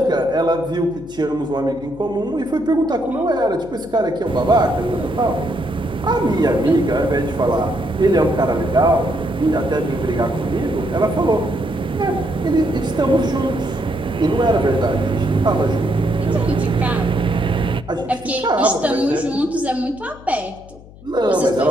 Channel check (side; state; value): left; noise; hum, 20 dB below the sound